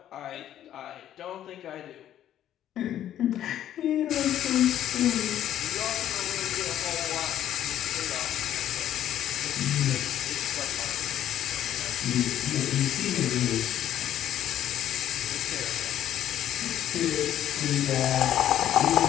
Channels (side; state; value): right; quieter; 11.4 dB